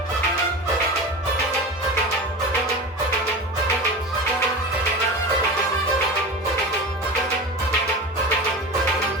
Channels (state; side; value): normal; both; correlation 0.29